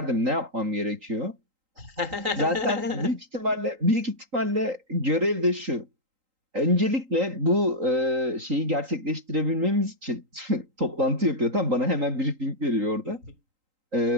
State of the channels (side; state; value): left; late; 3.8 ms